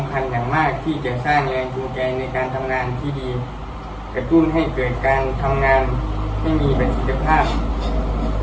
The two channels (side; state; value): both; identical; correlation 1.00